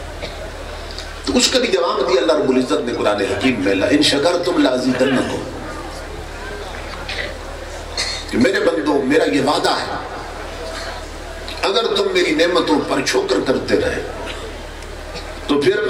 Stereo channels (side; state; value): both; identical; correlation 1.00